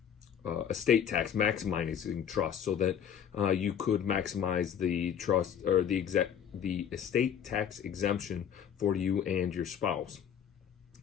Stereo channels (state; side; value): quieter; right; 8.6 dB